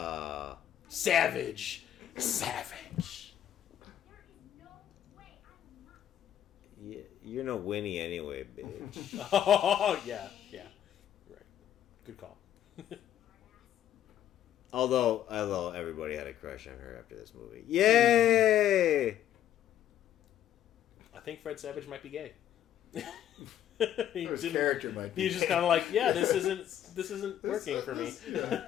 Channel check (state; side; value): quieter; right; 11.0 dB